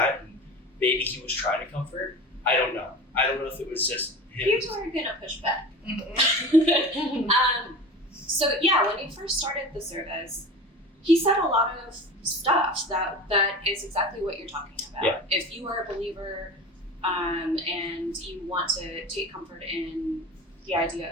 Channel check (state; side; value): normal; both; correlation 0.34